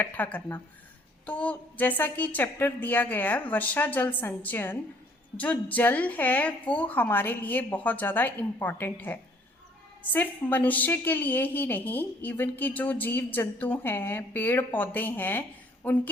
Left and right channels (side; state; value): both; normal; correlation 0.60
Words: करना। तो जैसा कि चैप्टर दिया गया है वर्षा जल संचयन, जो जल है वो हमारे लिए बहुत ज़्यादा इम्पॉर्टेंट है। सिर्फ मनुष्य के लिए ही नहीं, इवन कि जो जीव जंतु हैं, पेड़ पौधे हैं,